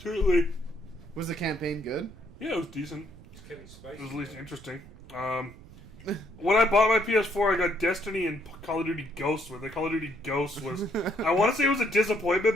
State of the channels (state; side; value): noise; right; rumble, 19 dB below the sound